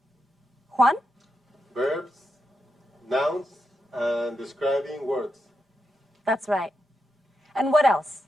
Juan? Verbs, nouns, and describing words. That's right. And what else?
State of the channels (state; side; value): normal; both; correlation 0.86